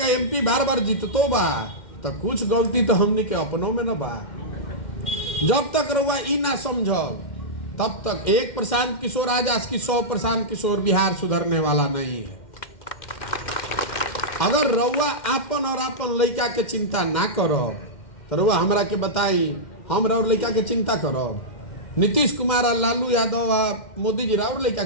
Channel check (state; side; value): late; right; 2.1 ms